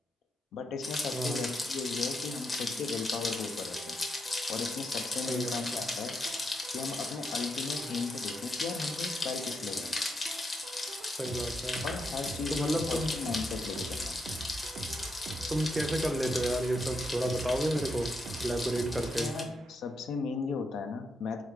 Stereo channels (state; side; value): normal; both; correlation 0.82